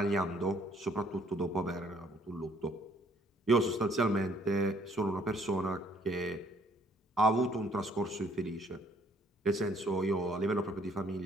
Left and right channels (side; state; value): both; normal; correlation 0.63